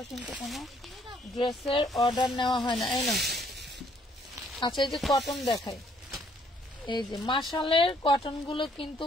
কিন্তু কোনো ড্রেসের অর্ডার নেওয়া হয় না। এই না, আচ্ছা এই যে কটন দেখাই, এই যে মাশালের কটন গুলো কিন্তু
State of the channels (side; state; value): both; normal; correlation 0.65